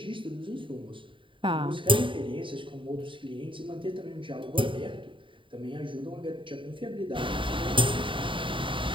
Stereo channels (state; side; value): late; left; 0.25 ms